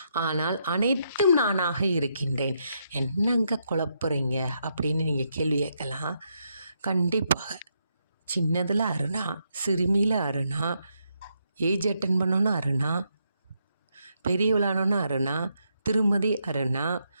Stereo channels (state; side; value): inverted; both; correlation -0.79